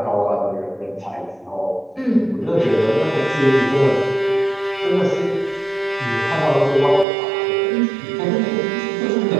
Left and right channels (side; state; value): left; drops out; at 7.1 s